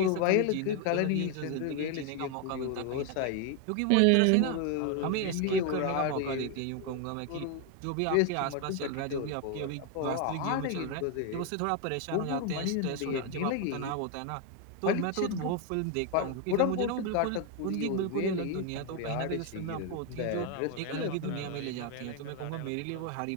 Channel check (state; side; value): different; both; correlation 0.01